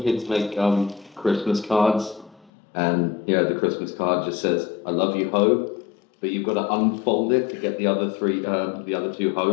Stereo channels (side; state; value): right; drops out; at 2.5 s